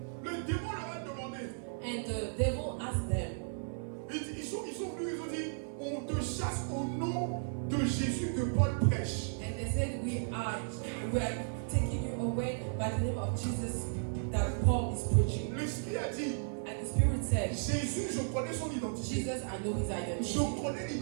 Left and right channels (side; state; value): left; silent; 55 dB below the other